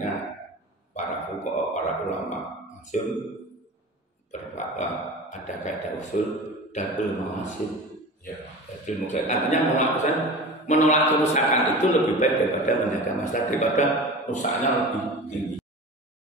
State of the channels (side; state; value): both; normal; correlation 0.34